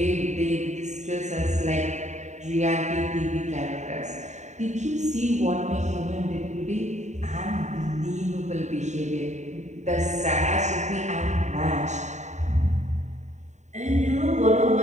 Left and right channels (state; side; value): late; left; 0.34 ms